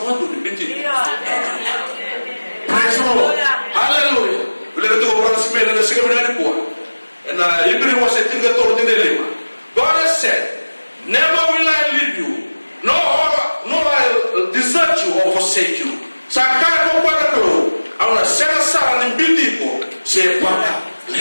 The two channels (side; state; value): both; inverted; correlation -1.00